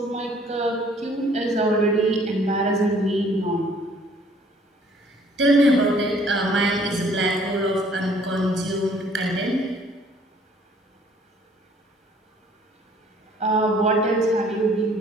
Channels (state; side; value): normal; both; correlation 0.58